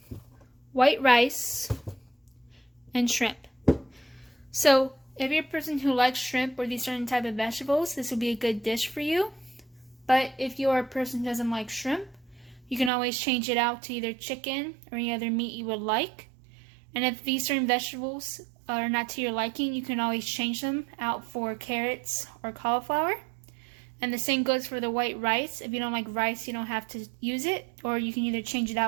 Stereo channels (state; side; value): drops out; left; at 12.9 s